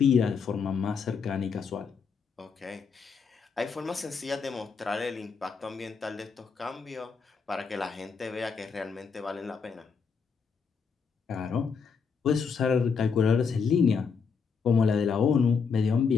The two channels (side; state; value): right; quieter; 5.7 dB